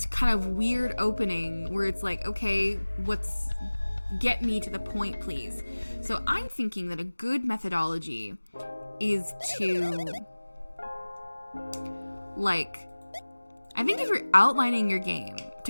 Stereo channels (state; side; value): inverted; both; correlation -1.00